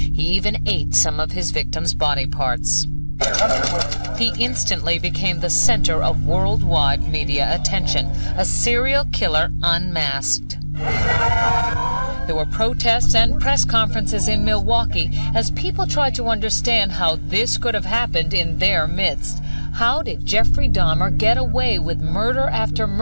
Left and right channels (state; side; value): inverted; both; correlation -1.00